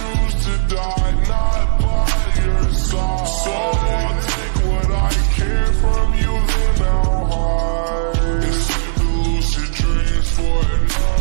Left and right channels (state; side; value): silent; left; 68 dB below the other